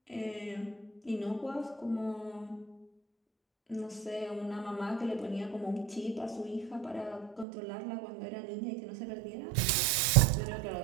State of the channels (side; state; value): left; drops out; at 7.5 s